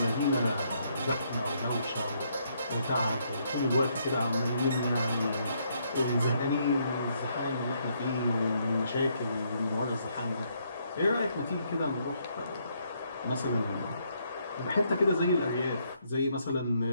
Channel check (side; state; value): both; inverted; correlation -0.73